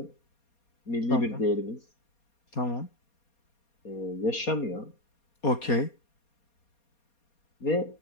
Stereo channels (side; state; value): right; late; 4.2 ms